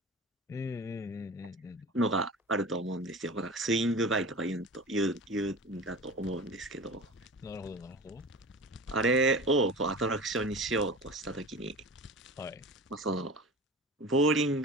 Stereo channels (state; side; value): normal; both; correlation 0.34